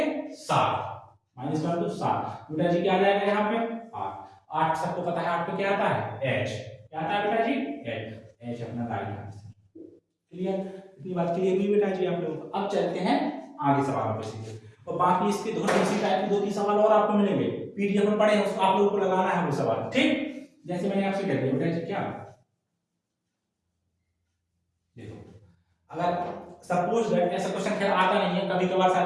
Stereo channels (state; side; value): identical; both; correlation 1.00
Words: 7, माइनस कर दो 7, बेटा जी क्या आ जाएगा यहाँ पे 8, 8 सबको पता है 8 पे क्या आता है एच, क्या आता है बेटा जी एच, एच अपना राइट आंसर। क्लियर? इतनी बात क्लियर हुई बेटा जी आप लोग। अब चलते हैं आगे सवालों पे सीधे, और बाकी इसके दोनों इसी टाइप के 2-3 सवाल और आपको मिलेंगे पीडीएफ में पढ़े हैं, उसको आप लोगों को लगाना है वो सवाल। ठीक, जैसे मैंने आपसे कह दिया बेटा जी क्या, देखो अगर सपोज दैट ऐसा क्वेश्चन खैर आता नहीं है, कभी कभार